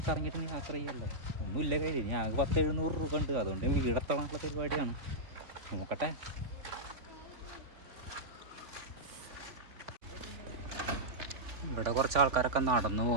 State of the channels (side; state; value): left; late; 3.4 ms